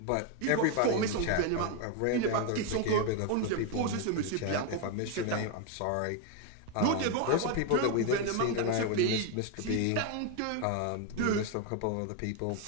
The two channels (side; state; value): both; different; correlation 0.01